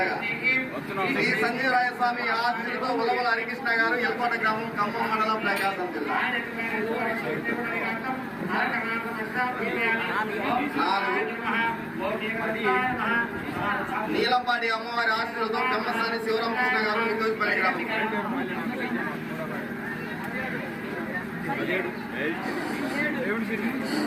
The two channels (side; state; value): both; identical; correlation 1.00